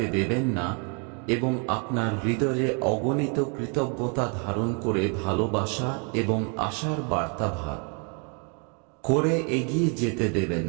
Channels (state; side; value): quieter; left; 37.3 dB